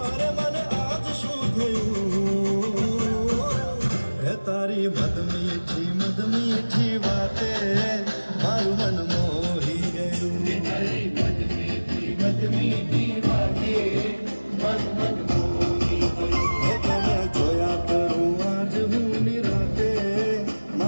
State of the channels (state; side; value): inverted; both; correlation -1.00